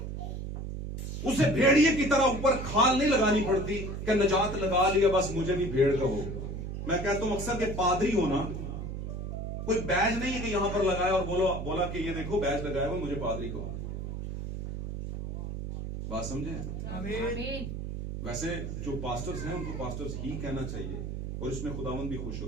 उसे भेड़िए की तरह ऊपर खाल नहीं लगानी पड़ती कि नजात लगा लिया बस मुझे भी भेड़ कहो। मैं कहता हूं अक्सर के पादरी होना कोई बैज नहीं है कि यहां पर लगाया और बोला कि ये देखो बैज लगाया हुआ मुझे पादरी कहो। बात समझे? आमीन। वैसे जो पास्टर्स हैं उनको पास्टर्स ही कहना चाहिए और इसमें खुदावंद भी खुश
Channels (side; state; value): right; noise; hum, 5 dB below the sound